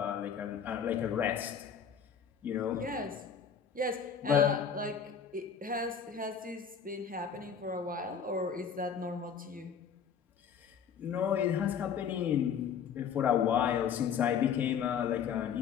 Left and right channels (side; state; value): right; quieter; 7.2 dB